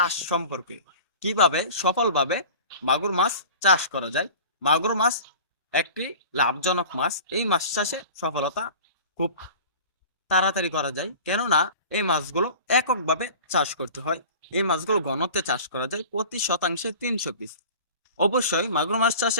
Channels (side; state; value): both; inverted; correlation -0.39